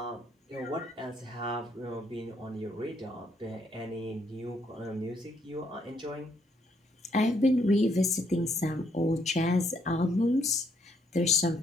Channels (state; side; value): normal; both; correlation 0.72